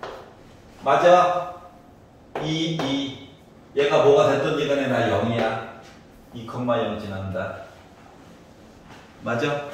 맞아? 2. 얘가 뭐가 됐든지 간에 나 0이야. 2,0 지난다. 맞아?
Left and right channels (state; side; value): identical; both; correlation 1.00